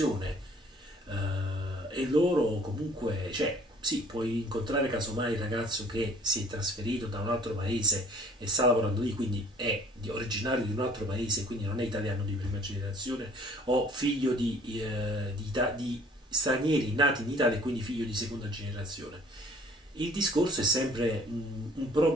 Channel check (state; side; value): normal; both; correlation 0.54